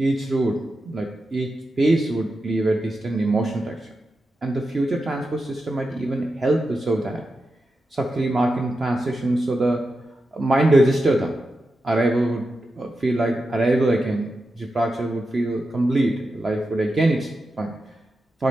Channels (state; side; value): normal; both; correlation 0.89